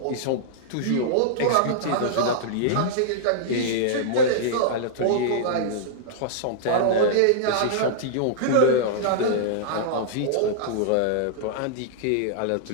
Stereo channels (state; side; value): different; both; correlation -0.02